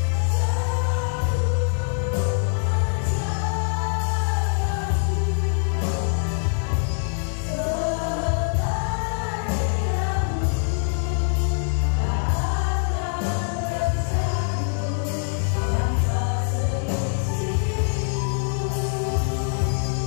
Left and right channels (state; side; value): silent; right; 60 dB below the other